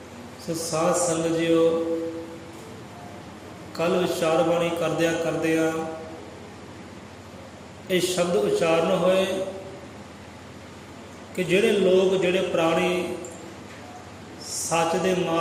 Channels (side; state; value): both; identical; correlation 1.00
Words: सो साध संगत जीओ, कल विचार बाणी करदिया ये शब्द उच्चारण होए कि जिहड़े लोग जिहड़े प्राणी सच दे